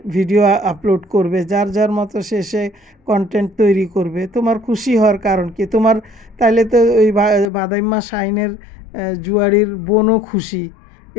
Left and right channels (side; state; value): right; drops out; at 7.5 s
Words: ভিডিও আপলোড করবে, যার যার মতো সে কন্টেন্ট তৈরি করবে। তোমার খুশি হওয়ার কারণ কি? তোমার তাইলে তো ওই বাদাইম্মা শাইনের জুয়ারির বোনও খুশি।